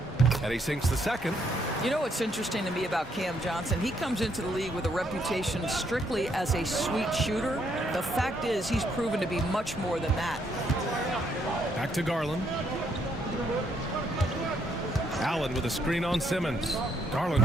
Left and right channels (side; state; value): both; normal; correlation 0.73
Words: And he sinks the second. You know what's interesting to me about Cam Johnson? He comes into the league with a reputation strictly as a sweet shooter. The fact is he's proven to be much more than that. Back to Garland. Allen with a screen on Simmons.